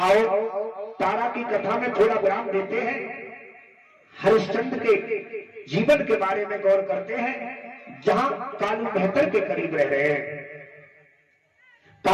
तारा की कथा में थोड़ा विराम देते हैं, हरिश्चंद्र के जीवन के बारे में गौर करते हैं, जहां कालू मेहतर के करीब रह रहे हैं।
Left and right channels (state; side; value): identical; both; correlation 1.00